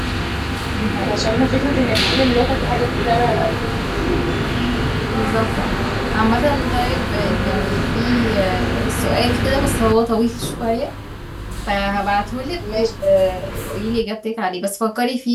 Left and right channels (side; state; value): both; identical; correlation 1.00